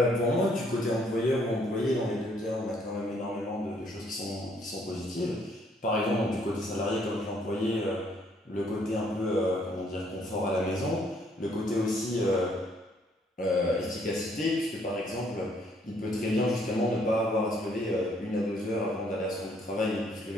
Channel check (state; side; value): normal; both; correlation 0.66